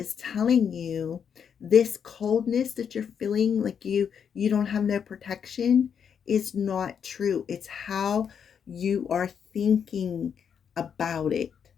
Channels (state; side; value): quieter; right; 7.5 dB